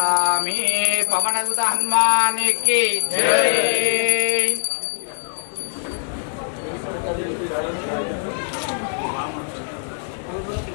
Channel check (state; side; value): silent; right; digital silence